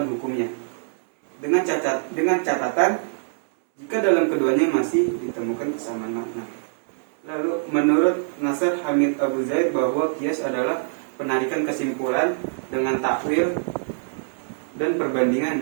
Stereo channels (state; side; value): silent; left; 63 dB below the other